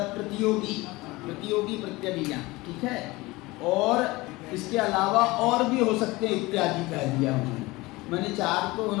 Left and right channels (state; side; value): quieter; right; 21.3 dB